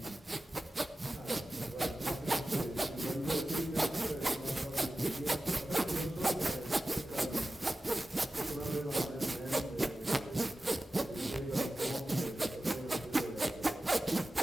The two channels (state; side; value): normal; both; correlation 0.95